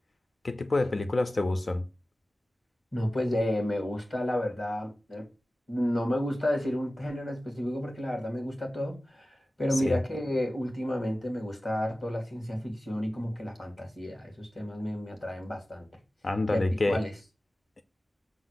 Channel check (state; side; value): normal; both; correlation 0.96